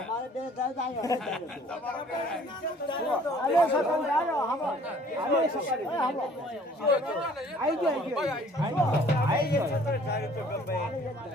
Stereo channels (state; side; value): normal; both; correlation 0.55